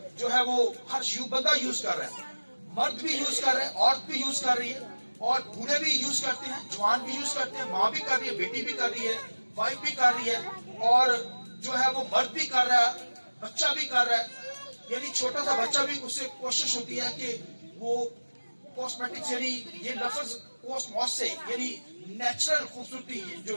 جو ہے وہ ہر بندہ یوز کر رہا ہے. مرد بھی یوز کر رہے ہیں عورت بھی یوز کر رہی ہے اور بوڑھے بھی یوز کرتے ہیں جوان بھی یوز کرتے ہیں ماں بھی کر رہی ہے بیٹی بھی کر رہی ہے وائف بھی کر رہی ہے اور جو ہے وہ مرد بھی کر رہا ہے بچہ بھی کر رہا ہے. یعنی چھوٹا سا بچہ بھی اس سے کوشش ہوتی ہے کہ وہ کاسمیٹکس یعنی یہ لفظ کوسموس سے یعنی نیچرل خوبصورتی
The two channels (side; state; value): both; inverted; correlation -1.00